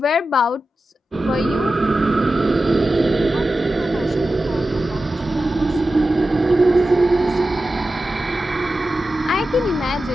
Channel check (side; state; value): both; normal; correlation 0.93